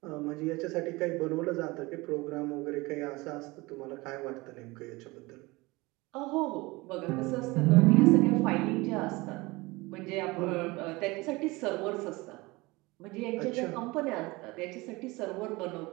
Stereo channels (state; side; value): quieter; left; 22.8 dB